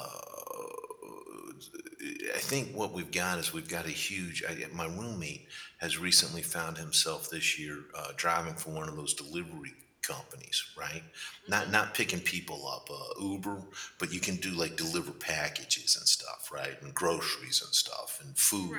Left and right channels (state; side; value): identical; both; correlation 1.00